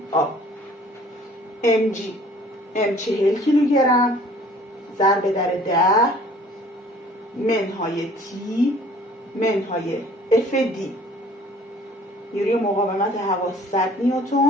mg m 40 کیلوگرم ضرب در 10 منهای t منهای fd، نیروی مقاومت هوا 100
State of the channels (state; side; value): normal; both; correlation 0.53